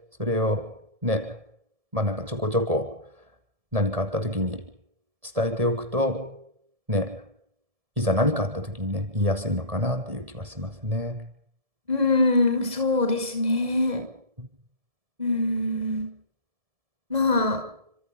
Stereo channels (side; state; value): left; late; 1.7 ms